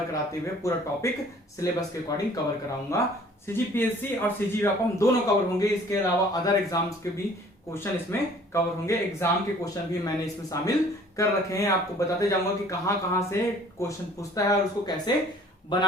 कराते हुए पूरा टॉपिक सिलेबस के अकॉर्डिंग कवर कराऊंगा। CGPSC और CG व्यापम दोनों कवर होंगे, इसके अलावा अदर एग्जाम्स के भी क्वेश्चन इसमें कवर होंगे। एग्जाम के क्वेश्चन भी मैंने इसमें शामिल कर रखे हैं, आपको बताते जाऊंगा कि कहां से क्वेश्चन पूछता है और उसको कैसे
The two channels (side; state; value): both; normal; correlation 0.53